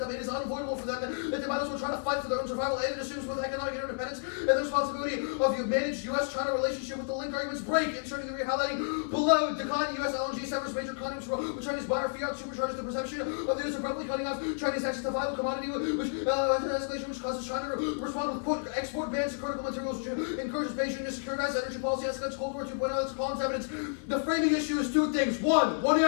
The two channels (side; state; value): right; silent; 57 dB below the other